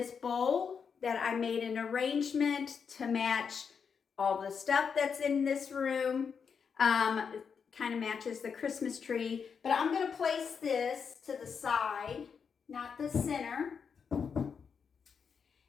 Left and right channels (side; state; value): right; quieter; 6.3 dB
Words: bowl that I made an arrangement to match all the stuff that's in this room. Kind of matches the Christmas tree, but I'm going to place this to the side, not the center.